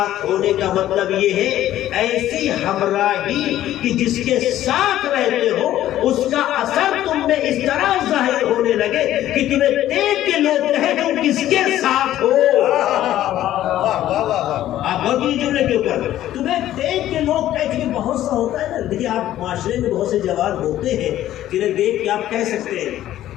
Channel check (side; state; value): right; quieter; 13.1 dB